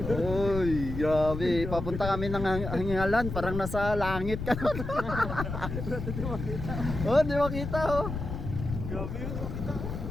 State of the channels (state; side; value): noise; left; rumble, 6 dB below the sound